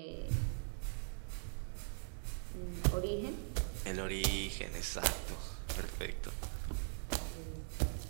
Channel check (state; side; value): silent; left; 50 dB below the other